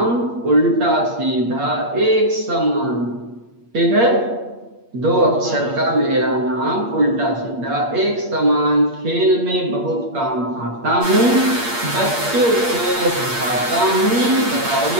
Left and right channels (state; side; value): late; left; 8.5 ms